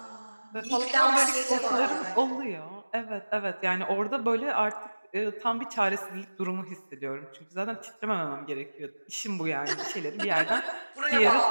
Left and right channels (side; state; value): both; inverted; correlation -1.00